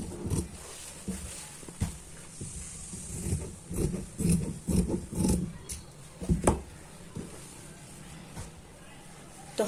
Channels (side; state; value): both; identical; correlation 1.00